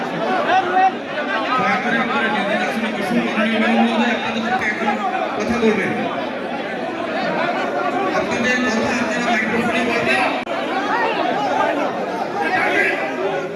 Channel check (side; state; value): both; identical; correlation 1.00